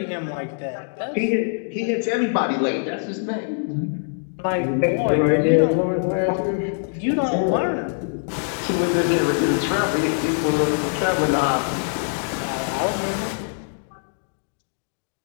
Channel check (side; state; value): right; silent; digital silence